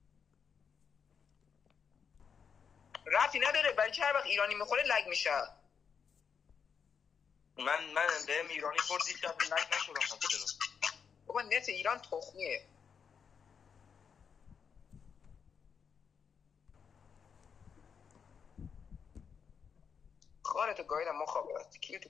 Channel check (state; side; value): quieter; right; 6.7 dB